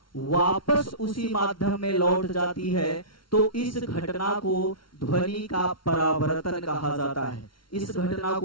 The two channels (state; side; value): late; right; 0.74 ms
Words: वापस उसी माध्यम में लौट जाती है तो इस घटना को ध्वनि का परावर्तन कहा जाता है। इस घटना